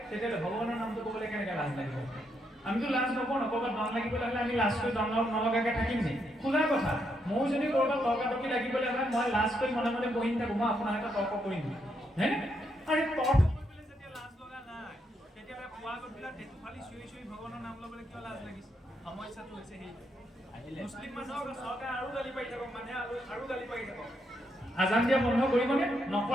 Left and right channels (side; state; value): both; normal; correlation 0.78